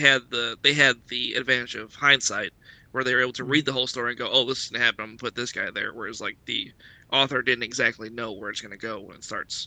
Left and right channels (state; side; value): identical; both; correlation 1.00